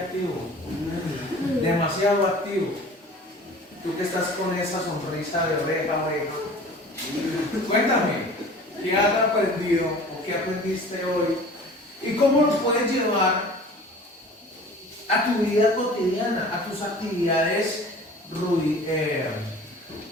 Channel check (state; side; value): normal; both; correlation 0.44